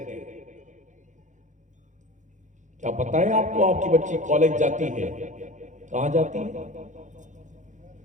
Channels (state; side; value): late; left; 0.36 ms